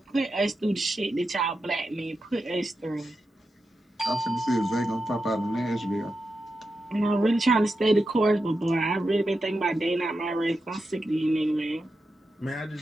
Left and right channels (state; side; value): normal; both; correlation 0.89